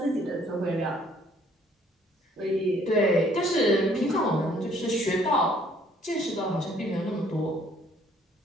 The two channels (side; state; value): both; normal; correlation 0.61